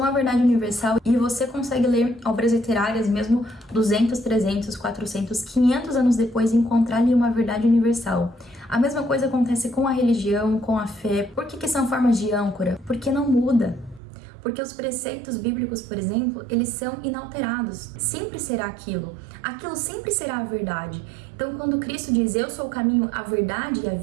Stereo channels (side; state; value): left; drops out; at 14.0 s